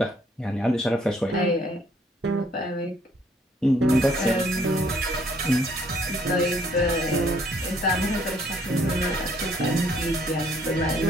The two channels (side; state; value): both; normal; correlation 0.64